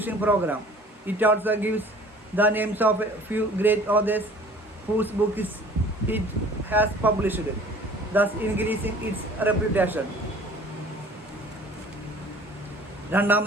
program. It also gives the names of a few great authors whose books it has published, thus increasing its reputation.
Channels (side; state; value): both; normal; correlation 0.49